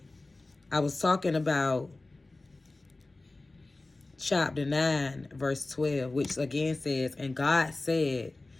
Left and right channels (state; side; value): quieter; right; 3.1 dB